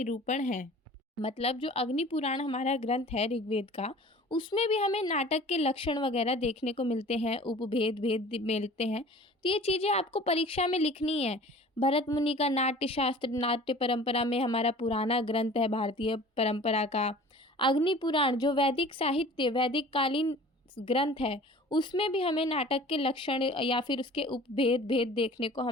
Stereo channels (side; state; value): both; normal; correlation 0.45